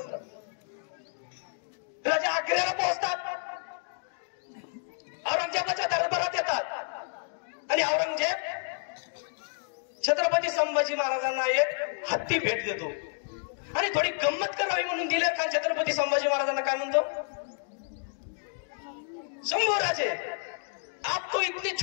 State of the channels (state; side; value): silent; right; digital silence